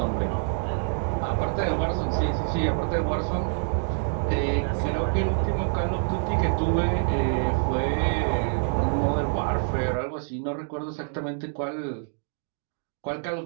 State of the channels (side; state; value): left; silent; digital silence